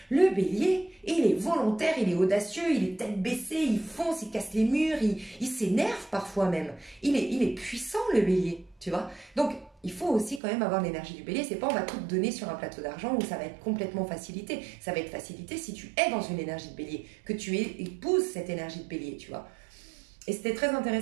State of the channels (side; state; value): left; drops out; at 10.4 s